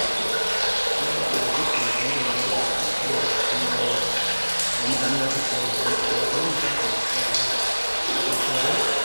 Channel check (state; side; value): inverted; both; correlation -1.00